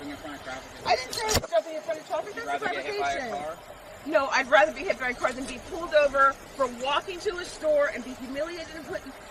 in front of traffic? I didn't say I was jumping in front of traffic. You'd That's a rather get hit by a fabrication. car? No, I'd rather be hit by a car than be pulled over for walking to a store and be humiliated and put.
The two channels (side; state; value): both; identical; correlation 1.00